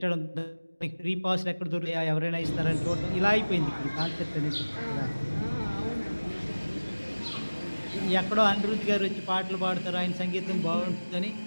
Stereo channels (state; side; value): inverted; both; correlation -1.00